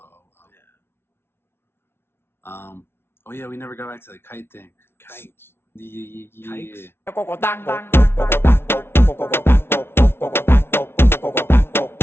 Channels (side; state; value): right; late; 0.12 ms